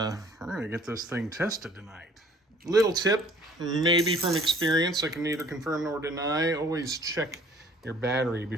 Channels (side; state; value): both; normal; correlation 0.55